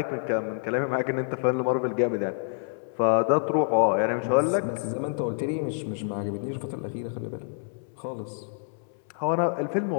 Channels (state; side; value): silent; right; 59 dB below the other